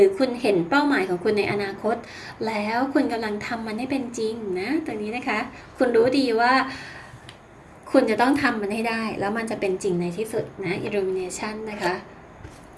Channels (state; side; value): identical; both; correlation 1.00